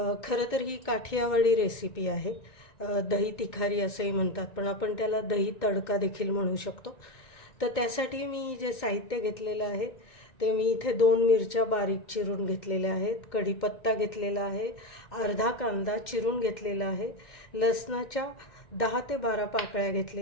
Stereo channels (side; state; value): right; late; 1.9 ms